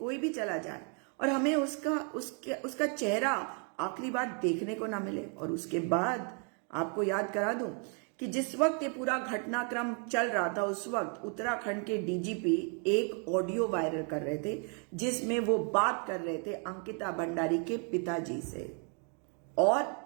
भी चला जाए और हमें उसका चेहरा आखिरी बार देखने को ना मिले। और उसके बाद आपको याद करा दूं कि जिस वक्त ये पूरा घटनाक्रम चल रहा था, उस वक्त उत्तराखंड के डीजीपी एक ऑडियो वायरल कर रहे थे जिसमें वो बात कर रहे थे अंकिता भंडारी के पिताजी से। और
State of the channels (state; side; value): quieter; left; 39.9 dB